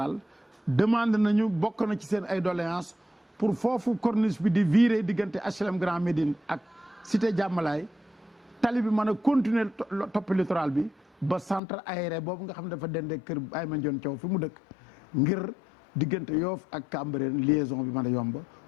demande nañu bokk na ci seen ay doléances pour foofu corniche bi di virer diggante HLM Grand Médine ak cité Diamalaye tali bi mën a continuer topp littoral bi ba centre aéré boobu nga xam ne dafa dendee kër Baye Mandione Thiaw fi mu dëkk ngir diggante Yoff ak Cambérène liaison bi mën a yomb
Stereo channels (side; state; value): right; drops out; at 11.6 s